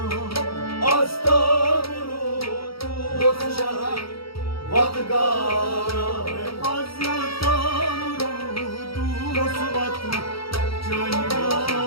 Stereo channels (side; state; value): right; late; 0.75 ms